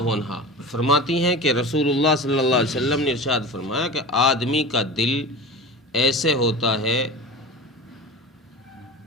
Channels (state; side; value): normal; both; correlation 0.31